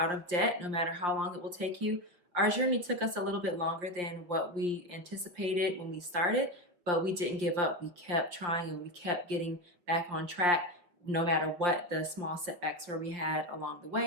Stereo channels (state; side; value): late; left; 5.6 ms